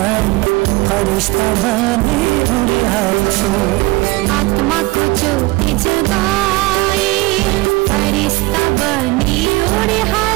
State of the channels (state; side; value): quieter; left; 22.0 dB